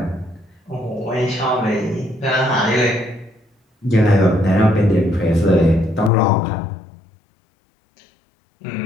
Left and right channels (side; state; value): right; drops out; at 6.1 s